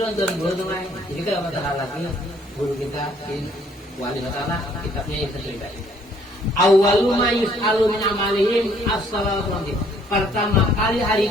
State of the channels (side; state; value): both; normal; correlation 0.63